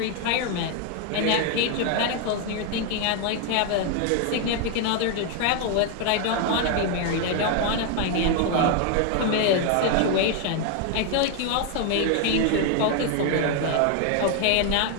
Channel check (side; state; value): both; different; correlation 0.01